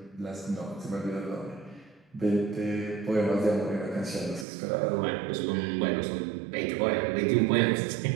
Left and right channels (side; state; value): left; drops out; at 4.5 s